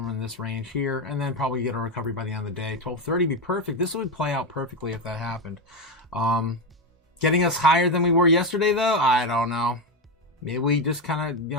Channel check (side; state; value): both; normal; correlation 0.11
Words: in this range here, and then probably get a recovery by the end of the day. 12:30 would be perfect. This would play out perfectly if that happened. Getting us higher than we were yesterday, though, I don't know. Maybe we just kind